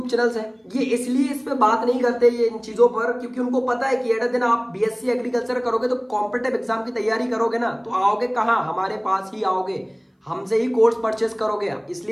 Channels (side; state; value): both; identical; correlation 1.00